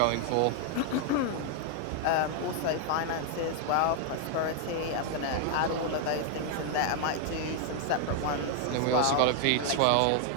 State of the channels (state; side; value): different; both; correlation 0.00